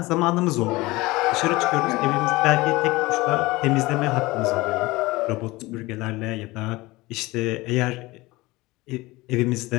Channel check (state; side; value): quieter; right; 20.9 dB